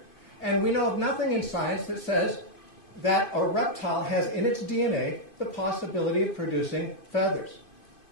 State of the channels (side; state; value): right; late; 2.5 ms